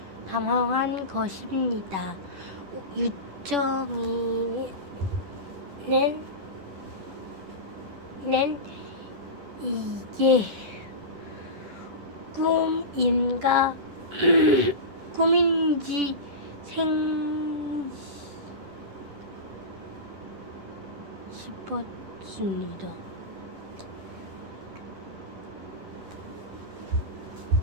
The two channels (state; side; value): late; left; 10 ms